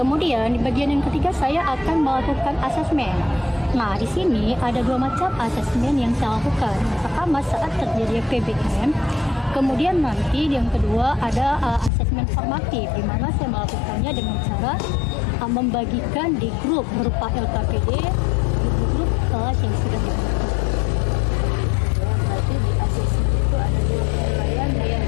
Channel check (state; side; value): drops out; right; at 11.9 s